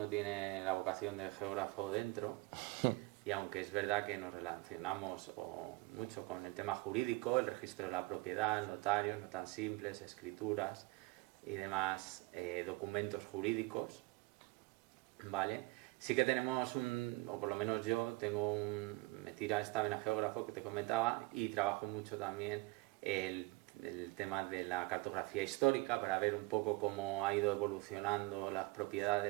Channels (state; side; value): quieter; left; 22.5 dB